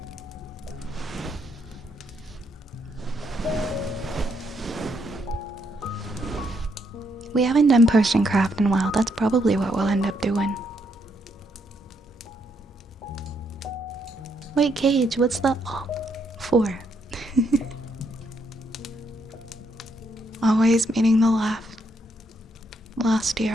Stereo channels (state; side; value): normal; both; correlation 0.75